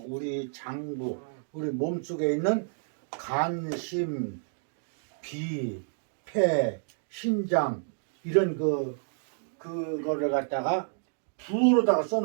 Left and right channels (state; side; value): silent; left; digital silence